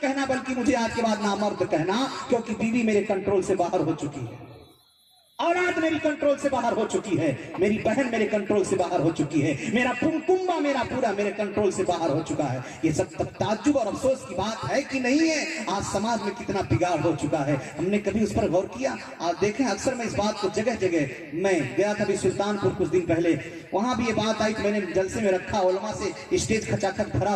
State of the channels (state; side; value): identical; both; correlation 1.00